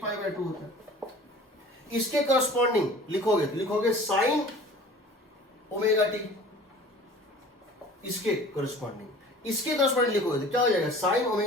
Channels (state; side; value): normal; both; correlation 0.45